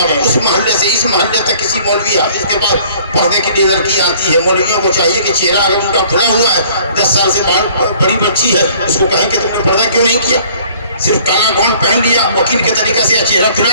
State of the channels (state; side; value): inverted; both; correlation -0.55